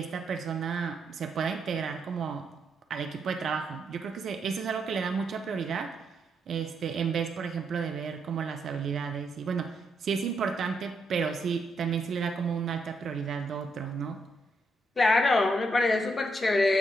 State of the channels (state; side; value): normal; both; correlation 0.78